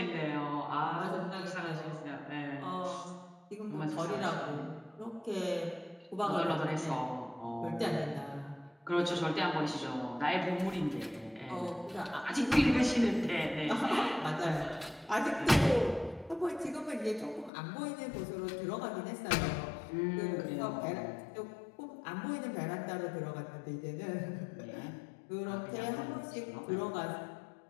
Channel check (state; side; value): drops out; right; at 17.5 s